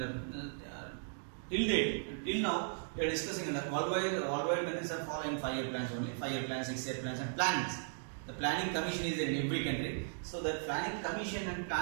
Till now, we are discussing that worldwide countries are following 5-year plans only. 5-year plans, 6-year plans and plannings. The Planning Commission is in every country. So the Planning Commission and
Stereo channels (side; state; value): left; silent; digital silence